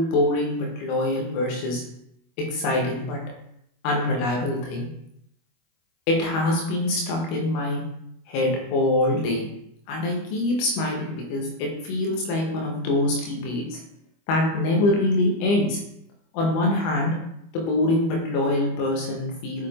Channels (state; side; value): late; right; 25 ms